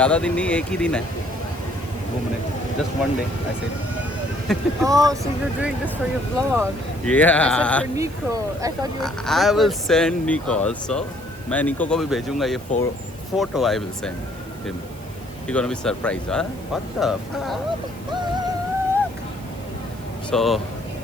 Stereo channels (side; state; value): right; noise; hiss, 23 dB below the sound